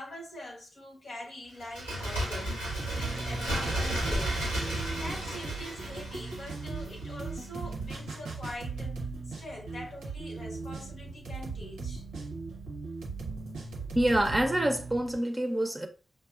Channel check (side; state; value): both; normal; correlation 0.89